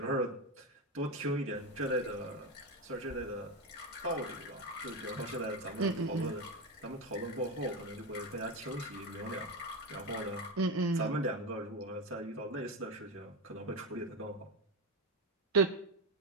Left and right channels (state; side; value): normal; both; correlation 0.15